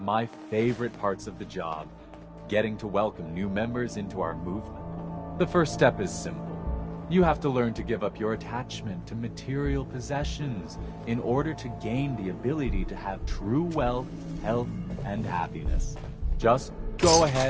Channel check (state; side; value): identical; both; correlation 1.00